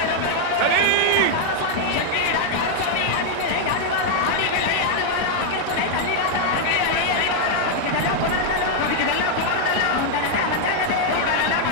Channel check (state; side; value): different; both; correlation 0.00